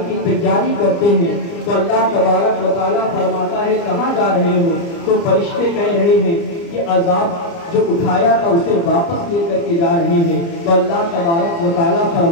کی تیاری کرتے ہیں۔ تو اللہ تبارک و تعالیٰ فرماتا ہے کہاں جا رہے ہو؟ تو فرشتے کہہ رہے ہیں کہ عذاب جو اٹھایا تھا اسے واپس لے کر کے جا رہے ہیں۔ تو اللہ تبارک و تعالیٰ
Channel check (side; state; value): right; late; 29 ms